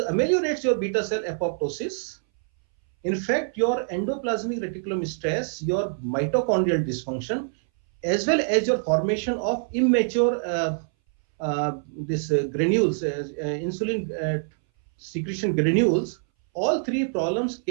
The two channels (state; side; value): silent; left; 60 dB below the other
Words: your beta cell apoptosis. In fact, your endoplasmic reticulum stress, your mitochondrial dysfunction, as well as your formation of immature granules, insulin secretion granules, all three problems